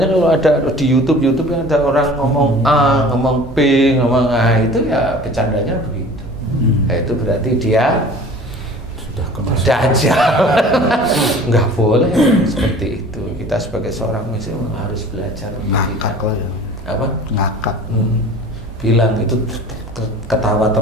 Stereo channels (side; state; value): both; normal; correlation 0.44